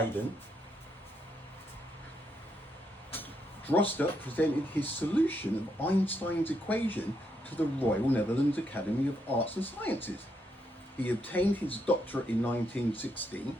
Droste presented his solution of Einstein's equation to the Royal Netherlands Academy of Arts and Sciences. He obtained his doctorate in 1916.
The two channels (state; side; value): normal; both; correlation 0.78